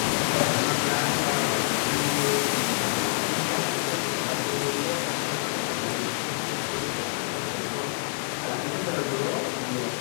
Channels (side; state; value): right; silent; digital silence